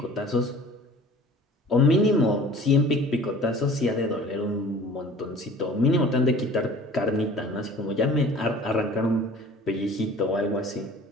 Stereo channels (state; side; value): normal; both; correlation 0.46